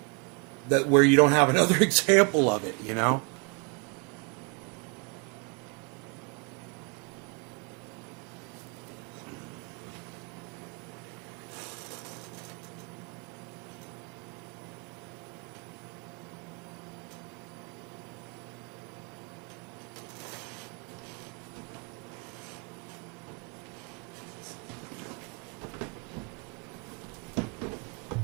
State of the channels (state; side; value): quieter; left; 34.0 dB